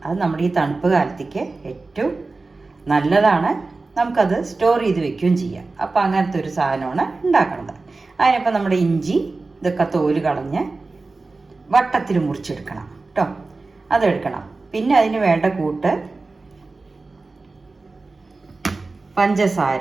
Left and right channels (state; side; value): quieter; left; 3.6 dB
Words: അത് നമ്മുടെ ഈ തണുപ്പ് കാലത്തേക്ക് ഏറ്റവും നല്ലതാണ്. നമുക്കത് സ്റ്റോർ ചെയ്ത് വെക്കുകയും ചെയ്യാം. അപ്പോൾ അങ്ങനത്തെ ഒരു സാധനമാണ് ഉണ്ടാക്കുന്നത്. അതിനപ്പോൾ നമ്മുടെ ഇഞ്ചി ഇതൊക്കെ തോല് കളഞ്ഞ് വട്ടത്തിൽ മുറിച്ചെടുക്കണം കേട്ടോ. അതെടുക്കണം. പിന്നെ അതിന് വേണ്ട കൂട്ട്